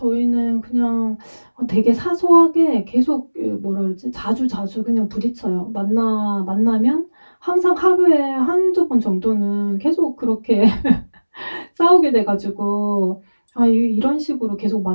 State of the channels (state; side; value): inverted; both; correlation -1.00